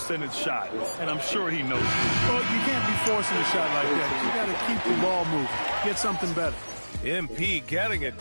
shot, and I'm sure he knows it. Well, you can't be forcing a shot like that. You got to keep the ball moving. Get something better. MP getting it.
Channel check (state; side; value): inverted; both; correlation -1.00